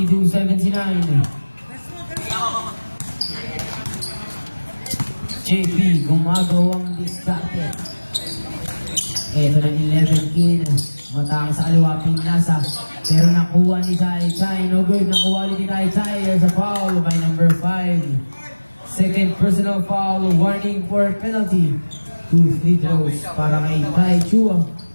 JP gumagawang diskarte. Ito na 11 kin. Matang sa kaliwa pinasa. Pero nakuha ni Tai Tai. No good. Nakuha ni Tai Tai. There's a foul by number 5. Second personal foul. Warning for penalty. 2 free throws para kay Tai Chua.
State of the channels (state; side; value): inverted; both; correlation -1.00